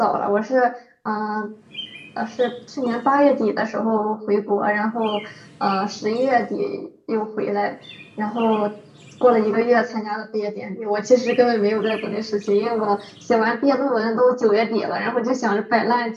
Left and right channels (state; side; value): identical; both; correlation 1.00